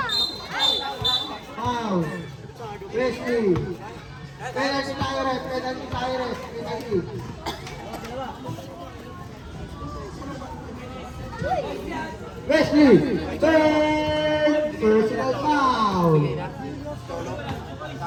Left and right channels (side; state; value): both; identical; correlation 1.00